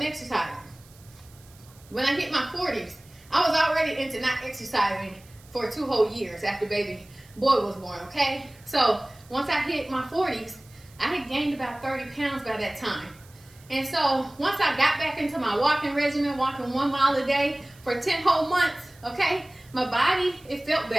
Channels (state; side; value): noise; right; hiss, 26 dB below the sound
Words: exercising. When I hit my 40s, I was already into not exercising for 2 whole years after baby boy was born, okay? So once I hit my 40s, I had gained about 30 pounds by that time. And so once I got back into my walking regimen, walking 1 mile a day for 10 whole months, okay, my body, it felt